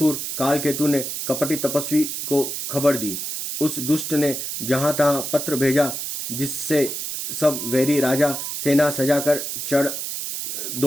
कालकेतु ने कपटी तपस्वी को खबर दी। उस दुष्ट ने जहां तहां पत्र भेजा, जिससे सब वैरी राजा सेना सजाकर चढ़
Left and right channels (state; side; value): noise; right; hiss, 4 dB below the sound